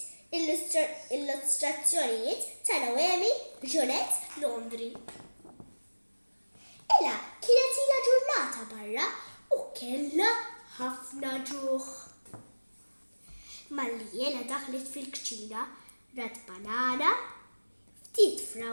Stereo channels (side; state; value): both; inverted; correlation -1.00